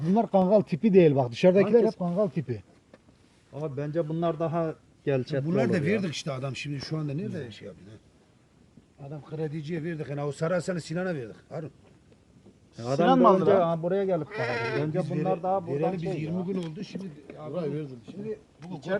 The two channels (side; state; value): both; identical; correlation 1.00